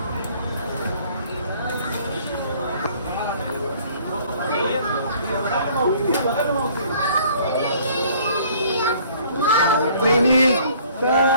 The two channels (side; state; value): both; inverted; correlation -0.57